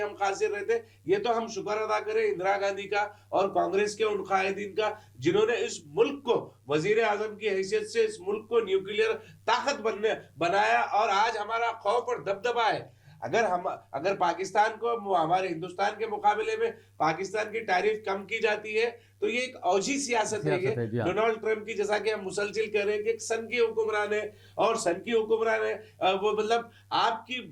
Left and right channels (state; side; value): identical; both; correlation 1.00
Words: खासिर रहते। ये तो हम शुक्र अदा करें इंदिरा गांधी का और कांग्रेस के उन कायदीन का, जिन्होंने इस मुल्क को वजीर आजम की हैसियत से इस मुल्क को न्यूक्लियर ताकत बनाया, और आज हमारा खौफ और दबदबा है। अगर पाकिस्तान को हमारे हिंदुस्तान के मुकाबले में पाकिस्तान की टैरिफ कम की जाती है तो ये एक औजी सियासत है। ये डोनाल्ड ट्रंप की, जैसा कि हम मुसलसिल कह रहे हैं कि एक सन की हुक्मरान है, और सन की हुक्मरान है वो मतलब आपकी